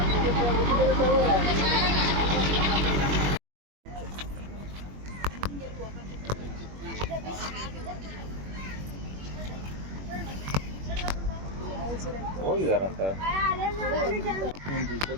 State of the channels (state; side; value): late; left; 21 ms